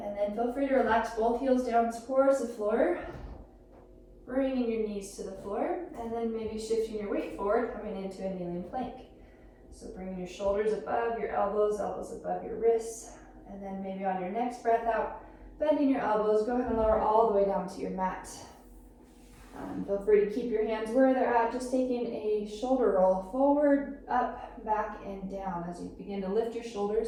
then feel free to relax both heels down towards the floor, bringing your knees to the floor, and then maybe shifting your weight forward, coming into a kneeling plank. So bringing your shoulders above your elbows, elbows above your wrists, and then maybe on your next breath out, bending your elbows, go ahead and lower all the way down to your mat. Feel free to keep your hands where they're at, just taking a shoulder roll forward, up, back, and down as you begin to lift your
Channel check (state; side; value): identical; both; correlation 1.00